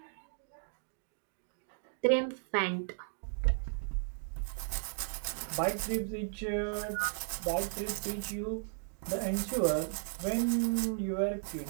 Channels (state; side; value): silent; left; digital silence